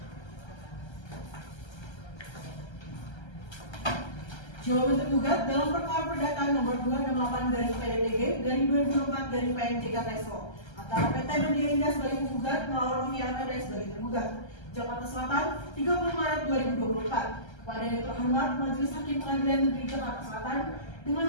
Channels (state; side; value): late; right; 1.3 ms